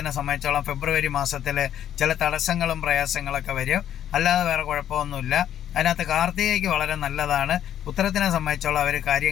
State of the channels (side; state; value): right; quieter; 10.6 dB